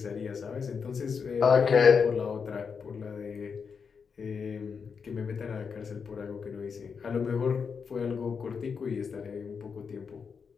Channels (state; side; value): quieter; right; 5.9 dB